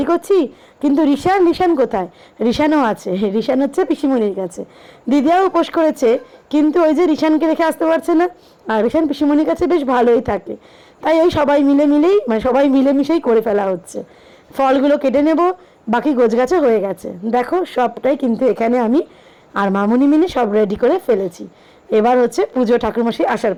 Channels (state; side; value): identical; both; correlation 1.00